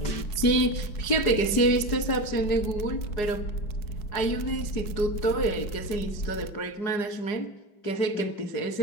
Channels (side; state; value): right; late; 4.9 ms